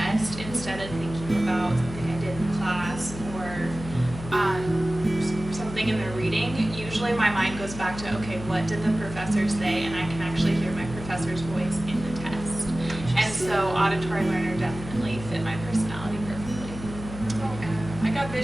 instead of thinking about something I did in class or something in the reading, usually my mind goes back to, okay, what did the professor say? And I can actually hear my professor's voice in the test. And so auditory learner definitely fit my personality perfectly. I got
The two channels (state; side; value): noise; left; hum, 11 dB below the sound